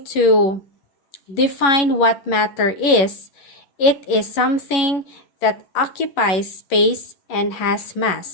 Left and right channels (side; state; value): right; late; 11 ms